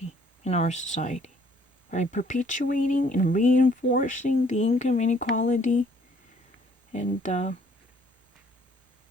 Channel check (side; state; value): both; normal; correlation 0.61